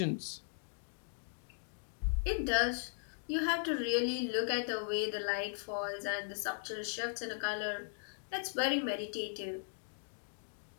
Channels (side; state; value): right; silent; digital silence